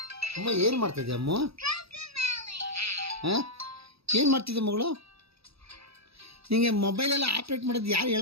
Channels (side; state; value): left; late; 0.77 ms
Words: ಅಮ್ಮ ಏನು ಮಾಡ್ತಿದ್ದೆ ಅಮ್ಮ? ಹಾಂ, ಏನು ಮಾಡ್ತಿದ್ದೆ ಮಗಳು? ನಿಮಗೆ ಮೊಬೈಲೆಲ್ಲ ಆಪ್ರೇಟ್ ಮಾಡೋದು ಯಾರು